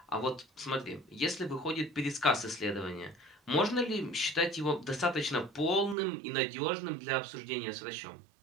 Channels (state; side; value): drops out; left; at 6.0 s